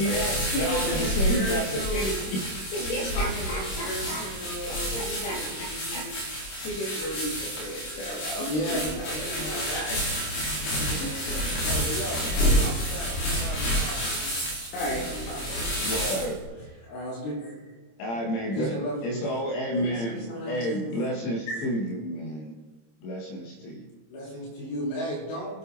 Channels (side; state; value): right; late; 26 ms